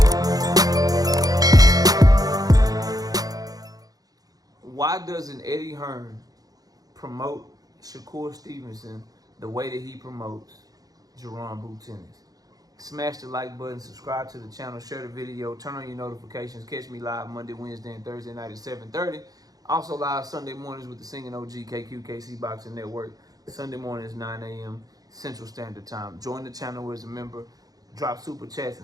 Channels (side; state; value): left; late; 0.18 ms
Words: Why doesn't Eddie Hearn promote Shakur Stevenson the way that he promotes Jaron Boots Ennis? Smash the like button, subscribe to the channel, share the video, turn on your notifications. Catch me live Monday, Wednesday, and Thursday night at 7:30. Also live Sunday mornings with the Singing OG KQKC Boxing Network. Sunday mornings 9 a.m. Central Standard Time. Join the channel as a member. Drop super chats